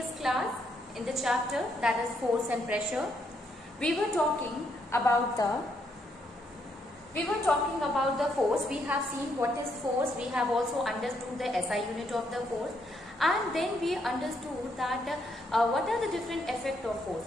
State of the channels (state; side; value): normal; both; correlation 0.75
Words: class, in the chapter that is force and pressure, we were talking about the force. We have seen what is force. We have also understood the SI unit of the force, and then we understood that what are the different effects of